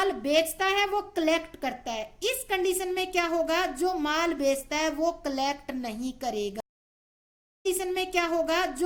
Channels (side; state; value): both; identical; correlation 1.00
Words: बेचता है वो कलेक्ट करता है। इस कंडीशन में क्या होगा, जो माल बेचता है वो कलेक्ट नहीं करेगा। कंडीशन में क्या होगा,